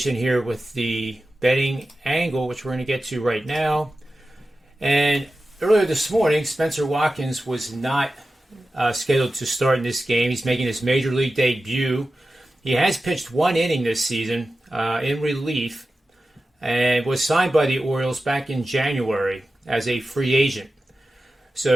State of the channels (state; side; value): normal; both; correlation 0.94